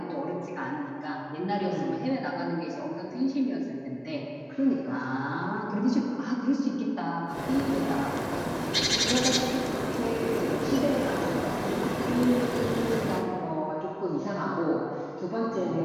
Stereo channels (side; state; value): both; identical; correlation 1.00